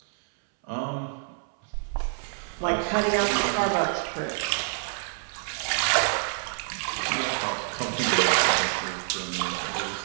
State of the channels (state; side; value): silent; left; 60 dB below the other